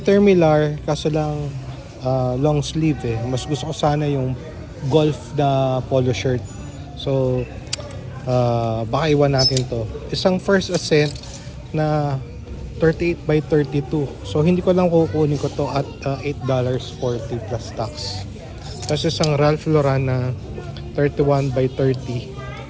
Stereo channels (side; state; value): both; identical; correlation 1.00